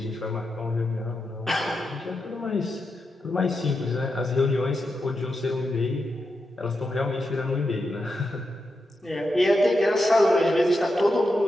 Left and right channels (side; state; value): both; normal; correlation 0.87